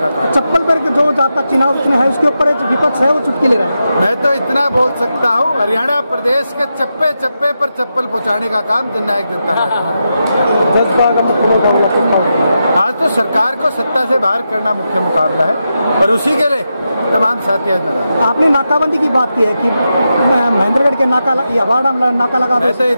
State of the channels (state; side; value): inverted; both; correlation -0.87